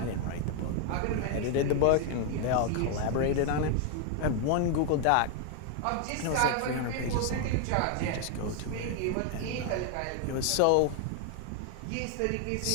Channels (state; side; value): different; both; correlation 0.00